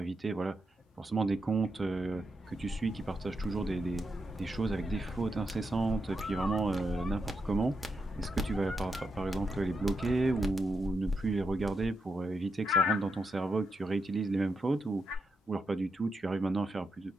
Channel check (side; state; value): both; normal; correlation 0.84